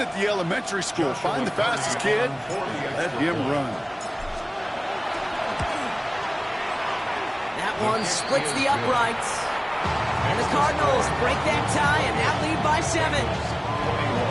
the elementary school, find the fastest kid, let him run. That one splits the uprights. And the Cardinals break that tie and now lead by 7.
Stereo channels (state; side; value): identical; both; correlation 1.00